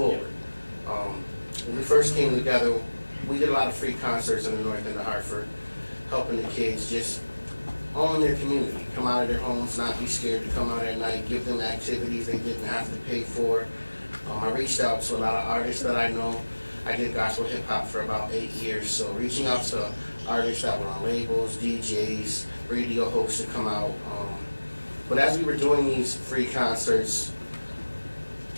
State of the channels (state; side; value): inverted; both; correlation -1.00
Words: When we first came together, we did a lot of free concerts in the north end of Hartford, helping the kids just own their community, come out of their homes, not be scared to come out at night, give them activities they didn't have to pay for. I reached out to a lot of artists that I know. I did gospel hip hop for about 8 years, so reaching out to artists that were on labels, DJs, radio hosts to come out. But as we were doing these free concerts,